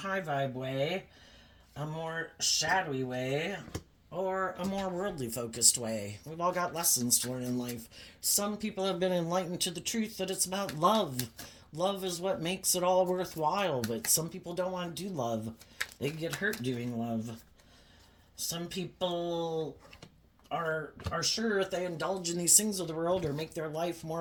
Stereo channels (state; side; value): identical; both; correlation 1.00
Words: vibe way, a more shadowy way, or a more worldly focused way. We've all got lessons to learn in life. Some people have been enlightened to the truth that it's about love. Love is what makes it all worthwhile, but some people don't want to do love. They get hurt doing love. Some people are sure if they indulge in these things of the world or make their life